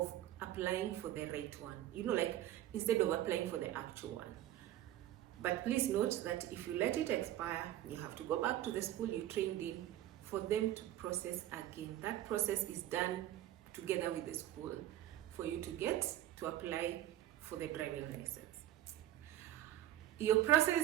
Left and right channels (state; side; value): quieter; left; 13.4 dB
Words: applying for the right one. Like instead of applying for the actual one. But please note that if you let it expire, you have to go back to the school you trained in for them to process again. That process is done together with the school for you to get to apply for the driving license. Your